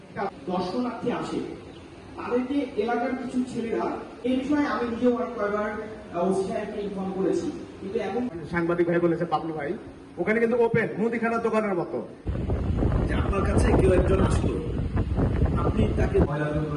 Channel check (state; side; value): identical; both; correlation 1.00